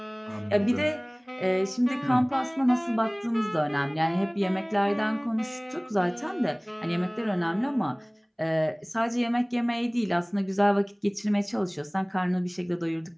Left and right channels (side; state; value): both; identical; correlation 1.00